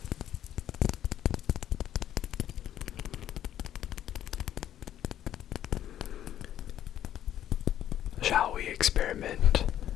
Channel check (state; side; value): quieter; right; 11.3 dB